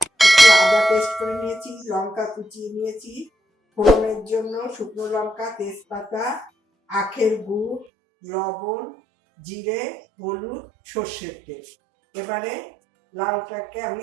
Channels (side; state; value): left; drops out; at 7.9 s